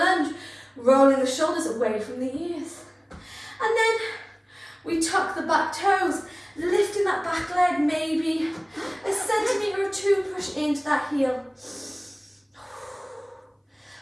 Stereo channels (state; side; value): identical; both; correlation 1.00